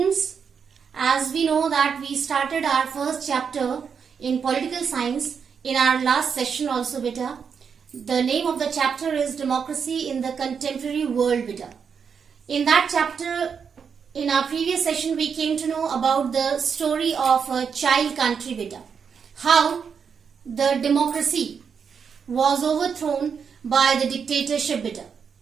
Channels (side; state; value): left; quieter; 6.5 dB